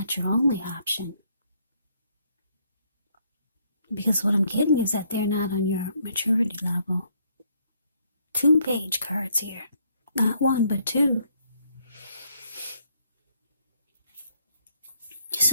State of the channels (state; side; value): inverted; both; correlation -0.70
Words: your only option. Because what I'm getting is that they're not on your maturity level. Two page cards here. Not one, but two.